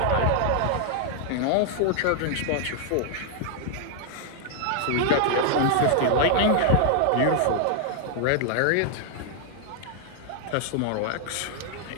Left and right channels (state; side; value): different; both; correlation 0.00